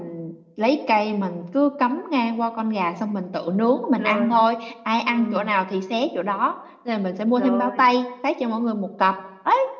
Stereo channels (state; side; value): identical; both; correlation 1.00